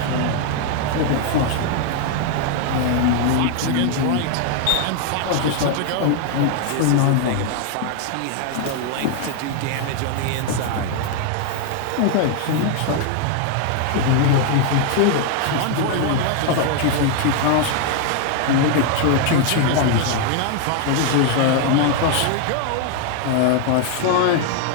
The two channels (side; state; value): both; different; correlation 0.00